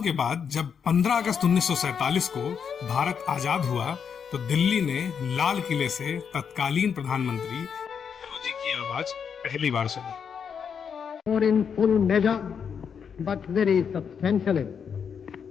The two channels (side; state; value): right; quieter; 7.0 dB